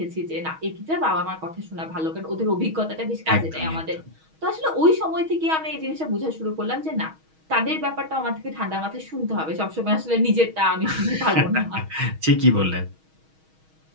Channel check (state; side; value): late; left; 6.3 ms